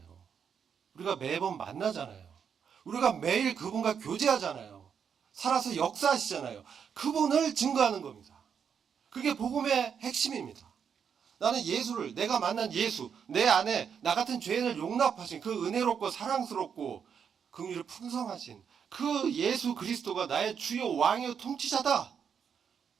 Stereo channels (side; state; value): left; quieter; 7.2 dB